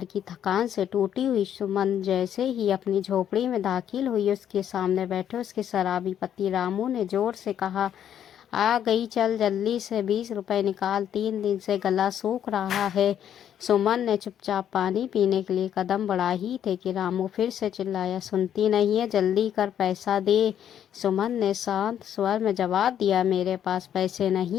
की थकान से टूटी हुई सुमन जैसे ही अपनी झोपड़ी में दाखिल हुई, उसके सामने बैठे उसके शराबी पति रामू ने जोर से कहा, आ गई, चल जल्दी से 20 रुपए निकाल, 3 दिन से गला सूख रहा है। सुमन ने चुपचाप पानी पीने के लिए कदम बढ़ा ही थे कि रामू फिर से चिल्लाया, सुनती नहीं है, जल्दी कर, पैसा दे। सुमन ने शांत स्वर में जवाब दिया, मेरे पास पैसे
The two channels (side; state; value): right; quieter; 9.8 dB